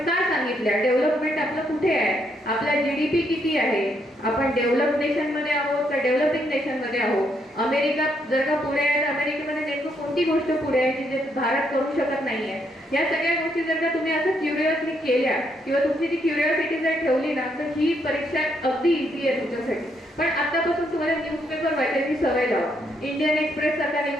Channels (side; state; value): both; normal; correlation 0.75